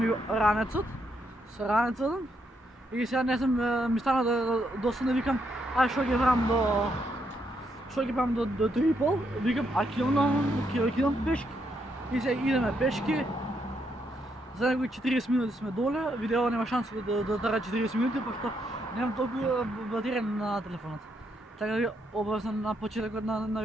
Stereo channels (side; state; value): both; normal; correlation 0.77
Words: ранецот, со ранецот и сега не знам, ми стана досадно, викам, ај што ќе правам до 3:30, викам, ќе идам пешки. И сега идеме пешки. За некои 40 минути сме доле, видео нема шанса да трае 40 минути, пошто немам толку батерија на телефонот. Така да ви обавам на почетокот на